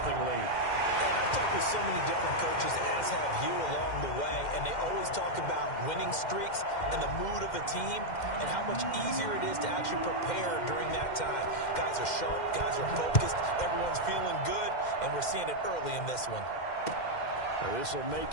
And I've talked with so many different coaches, as have you along the way, and they always talk about winning streaks and the mood of a team and how much easier it is to actually prepare during that time. Guys are sharp, guys are focused, everyone's feeling good, and we're seeing it early in this one. Now this will make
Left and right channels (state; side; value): late; right; 2.1 ms